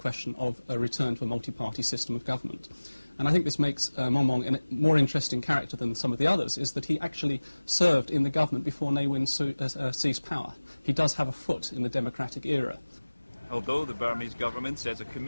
of a return to a multi-party system of government. And I think this makes Muang Muang a more interesting character than some of the others, is that he actually served in the government before Ne Win seized power. He does have a foot in the democratic era. Although the Burmese government says a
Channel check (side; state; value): both; inverted; correlation -1.00